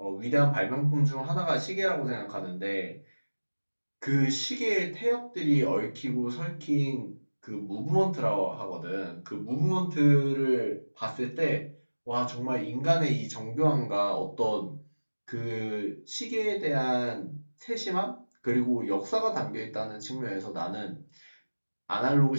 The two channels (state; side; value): inverted; both; correlation -1.00